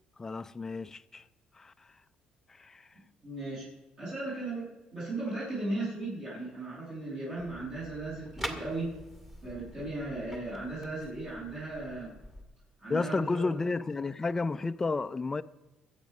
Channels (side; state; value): both; normal; correlation 0.82